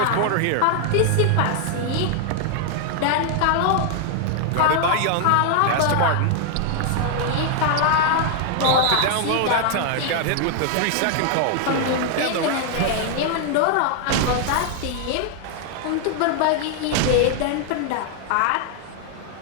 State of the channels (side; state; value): both; different; correlation 0.00